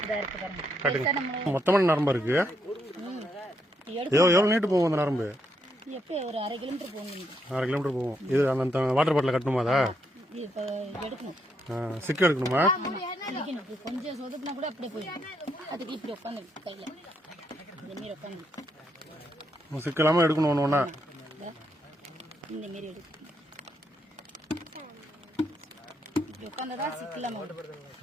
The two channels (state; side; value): normal; both; correlation 0.77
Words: இதாக இருக்கு பாருங்க. மொத்தமான நரம்பு இருக்கு. எவ்வளோ நீட்டு போகும் அந்த நரம்பு? எப்போ ஒரு 1/2 கிலோமீட்டர் போகணும். 1/2 கிலோமீட்டர் போகும். இது அந்த வாட்டர் பாட்டில் கட்டணுமா? அதா இப்போ எடுக்கணும். சிக்கு எடுக்கணுமா? கொஞ்சம் சொதுப்புனா கூட அப்படியே போயிடும். அதுக்கு இப்படி உட்காந்து கையில் இந்த மாரி உட்காந்து சிக்கு இல்லாமல் எடுக்கணும். ஒன்று ஒன்றா இந்த மாரி எடுக்கணும். இப்படி உட்காந்துதான் சிக்கு இல்லாமல்